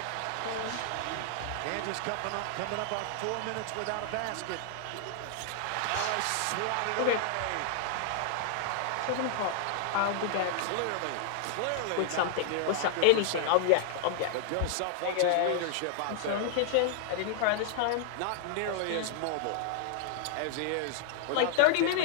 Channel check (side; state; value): both; different; correlation -0.01